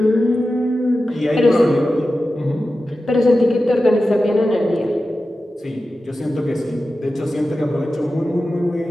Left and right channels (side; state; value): both; normal; correlation 0.93